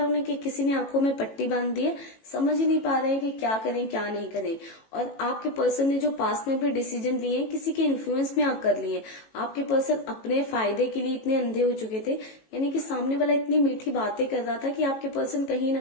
उन्हें कि किसी ने आंखों में पट्टी बांध दी है, समझ ही नहीं पा रहे हैं कि क्या करें क्या नहीं करें। और आपके पर्सन ने जो पास में भी डिसीजन लिए हैं किसी के इन्फ्लुएंस में आकर लिए, आपके पर्सन अपने फायदे के लिए इतने अंधे हो चुके थे, यानी कि सामने वाला इतनी मीठी बातें कर रहा था कि आपके पर्सन कहीं ना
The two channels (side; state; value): right; late; 18 ms